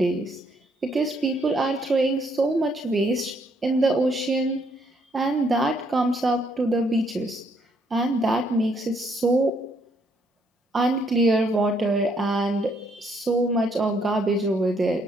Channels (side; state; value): both; normal; correlation 0.70